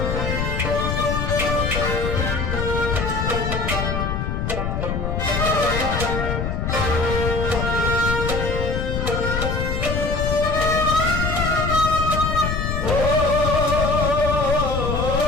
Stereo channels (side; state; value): left; noise; rumble, 1 dB below the sound